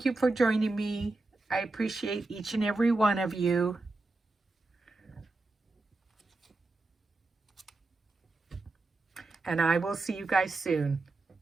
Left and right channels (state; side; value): quieter; left; 3.2 dB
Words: you for joining me. I appreciate each and every one of you. And I will see you guys soon.